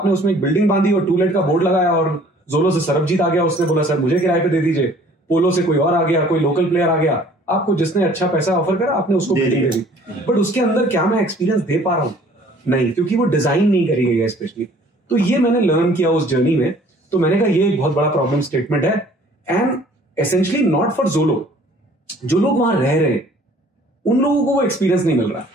उसमें एक बिल्डिंग बांधी और टूलेट का बोर्ड लगाया, और जोलो से सरबजीत आ गया, उसने बोला सर मुझे किराए पे दे दीजिए, पोलो से कोई और आ गया, कोई लोकल प्लेयर आ गया, आपको जिसने अच्छा पैसा ऑफर करा आपने उसको बिल्डिंग दे दी। बट उसके अंदर क्या मैं एक्सपीरियंस दे पा रहा हूँ? नहीं, क्योंकि वो डिजाइन नहीं करी गई है स्पेशली। तो ये मैंने लर्न किया उस जर्नी में। तो मैंने कहा ये एक बहुत बड़ा प्रॉब्लम स्टेटमेंट है एंड एसेंशियली नॉट फॉर जोलो, जो लोग वहां रह रहे हैं उन लोगों को वो एक्सपीरियंस नहीं मिल रहा।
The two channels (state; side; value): normal; both; correlation 0.54